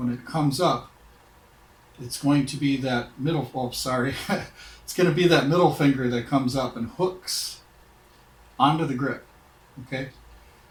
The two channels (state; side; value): identical; both; correlation 1.00